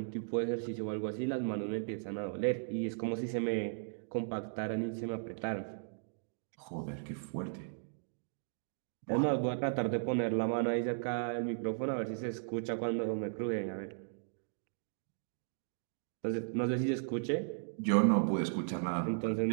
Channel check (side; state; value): left; silent; digital silence